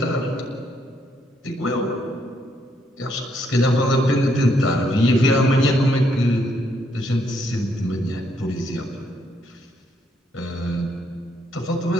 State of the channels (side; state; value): both; normal; correlation 0.73